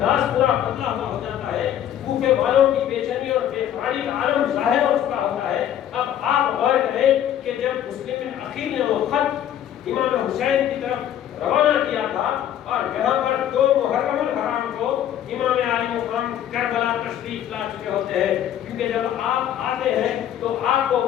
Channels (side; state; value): right; quieter; 10.8 dB